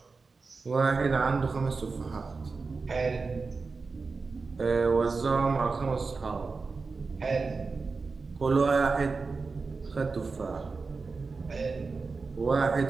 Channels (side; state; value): left; quieter; 4.3 dB